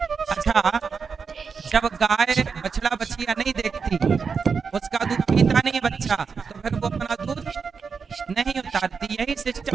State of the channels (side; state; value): left; quieter; 5.6 dB